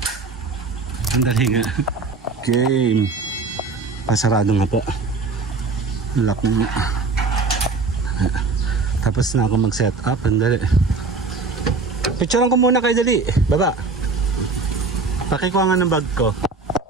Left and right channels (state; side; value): quieter; left; 4.1 dB